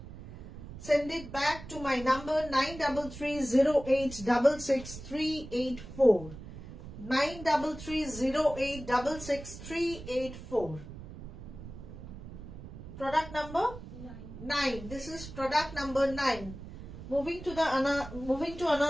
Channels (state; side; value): noise; right; rumble, 13 dB below the sound